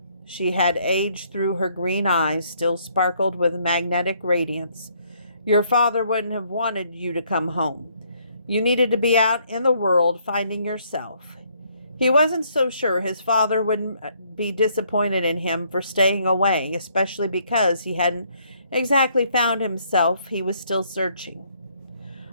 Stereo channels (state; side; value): inverted; both; correlation -0.68